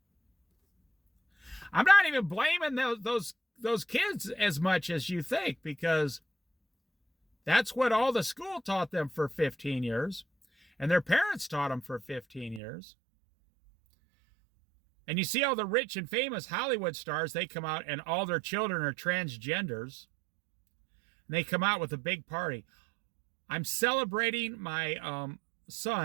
I'm not even blaming those kids as much as you think, because that's what all the school taught them for 15 years. And their parents taught them for 15 years. And you see all the rich and famous Hollywood stars, they come out and all their children are transgenders. And they come out with a big party. I'm celebrating my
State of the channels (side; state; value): left; drops out; at 12.6 s